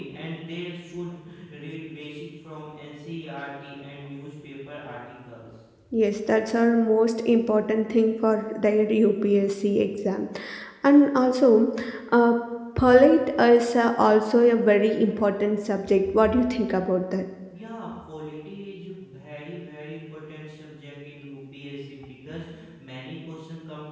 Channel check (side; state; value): both; identical; correlation 1.00